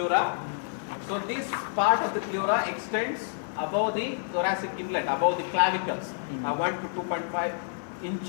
So this part of the pleura extends above the thoracic inlet, above the clavicles, 1 to 2.5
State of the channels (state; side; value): silent; right; digital silence